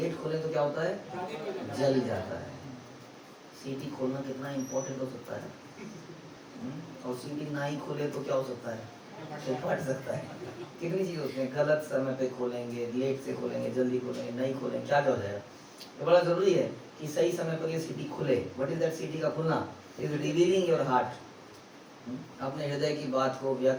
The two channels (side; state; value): both; identical; correlation 1.00